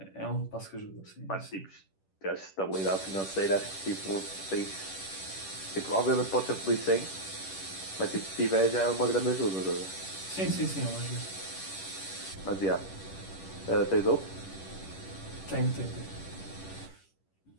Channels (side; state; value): right; late; 10 ms